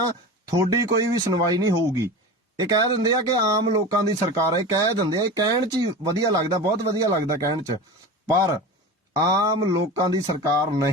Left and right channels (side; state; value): both; normal; correlation 0.30